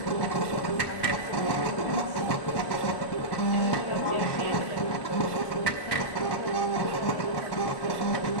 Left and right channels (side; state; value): right; late; 1.2 ms